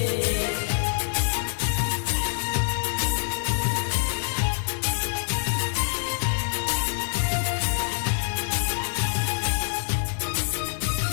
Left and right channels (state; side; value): silent; right; 61 dB below the other